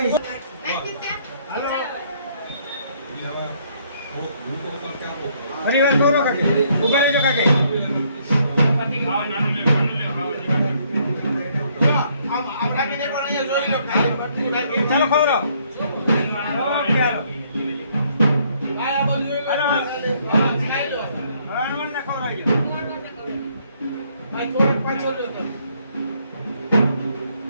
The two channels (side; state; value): both; inverted; correlation -0.68